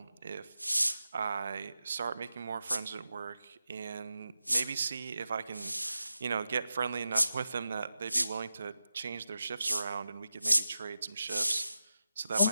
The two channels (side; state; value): both; inverted; correlation -0.91